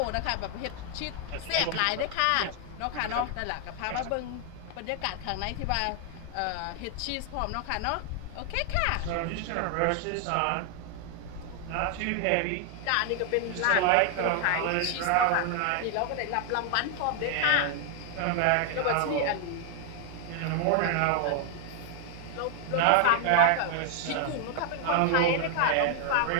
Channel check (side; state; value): both; different; correlation 0.00